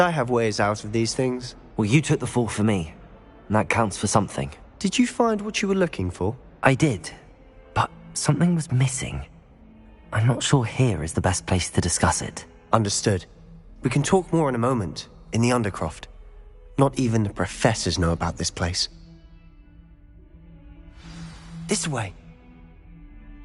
have ways out of these things. Well, you took the fall for me, and that counts for something. Did you find what you were looking for? I did, but something was missing. I'm not sure here is the best place to discuss it. Understood. We can talk more in a moment, in the Undercroft. Not even the professors know about this place. This way.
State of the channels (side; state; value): both; identical; correlation 1.00